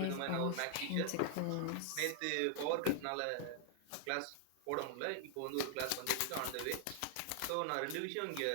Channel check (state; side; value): different; both; correlation -0.01